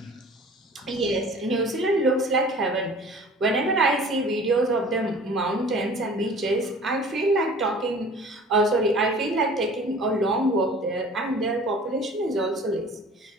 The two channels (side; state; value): both; normal; correlation 0.46